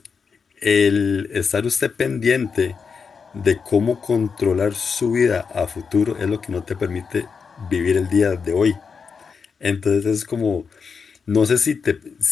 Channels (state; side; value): quieter; right; 5.7 dB